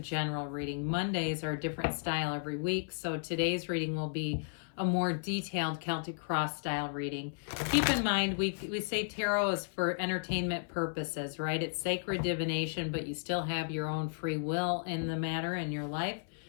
reading. Mondays are a different style every week. So today's reading will be a more detailed Celtic cross style reading. Keep in mind, we say tarot is for entertainment purposes, right? It's sacred divination, but you still have your own free will in the matter in your life.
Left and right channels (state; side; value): silent; right; 55 dB below the other